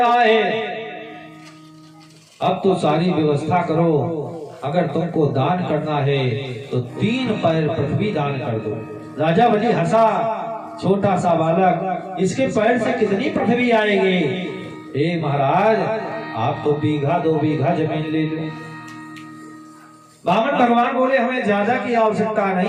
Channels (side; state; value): both; identical; correlation 1.00